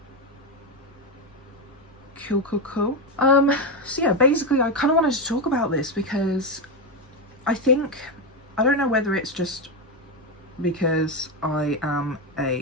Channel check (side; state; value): both; normal; correlation 0.09